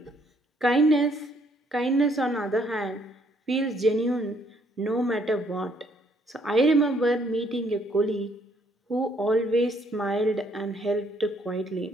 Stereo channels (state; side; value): normal; both; correlation 0.67